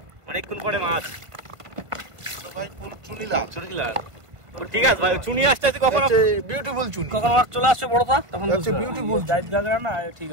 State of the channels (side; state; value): left; late; 1.1 ms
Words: অনেকক্ষণ পরে মাছ। তো ভাই ফুল চুনিলা চুনিলা ঠিক আছে ভাই, চুনি আসতে আসতে কখন বিউটিফুল চুনি কখন মাছ চলে আসছে বড়টা, তখন আচ্ছা বিউটিফুল জাত গাগরা না, ঠিক